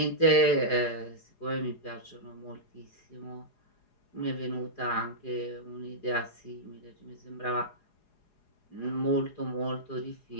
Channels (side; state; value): right; late; 4.8 ms